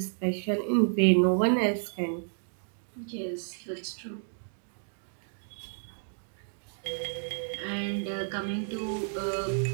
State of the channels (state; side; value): silent; left; digital silence